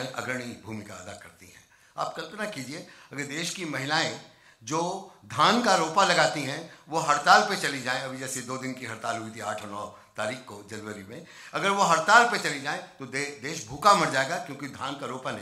अग्रणी भूमिका अदा करती हैं। आप कल्पना कीजिए, अगर देश की महिलाएं जो धान का रोपा लगाती हैं वो हड़ताल पे चली जाएं, अभी जैसे 2 दिन की हड़ताल हुई थी 8 और 9 तारीख को जनवरी में, अगर वो हड़ताल पे चली जाएं तो देश भूखा मर जाएगा, क्योंकि धान का रोपा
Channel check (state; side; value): identical; both; correlation 1.00